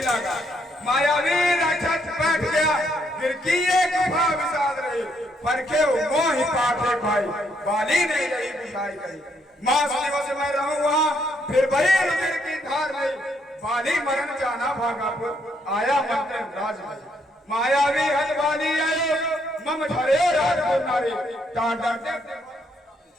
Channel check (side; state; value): both; normal; correlation 0.73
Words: मायावी राक्षस बैठ गया गिरकी एक गुफा विषाद रही, परखे मोह ही पाठे भाई बाली नहीं रही बुझाई गई। मास दिवस मैं रहूं वहाँ फिर वही रुधिर की धार नहीं, बाली मरण जाना भागापुर आया मंत्र राज में। मायावी हद बाली आयो मम धरे राजपुर नारी डांडा।